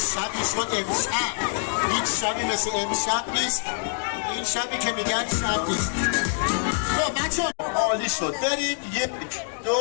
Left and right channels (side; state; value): right; silent; digital silence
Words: شد امشب. هیچ شبی مثل امشب نیست. این شبی که میگن شب نیست. خب بچه عالی شد. بریم 1 2